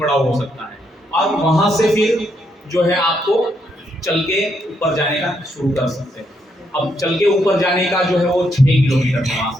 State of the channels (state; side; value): normal; both; correlation 0.77